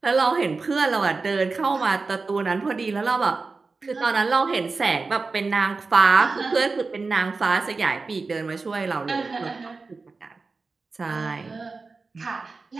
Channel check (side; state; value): left; quieter; 4.1 dB